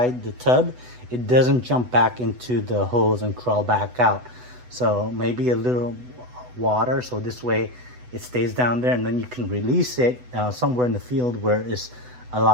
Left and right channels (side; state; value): left; late; 8.0 ms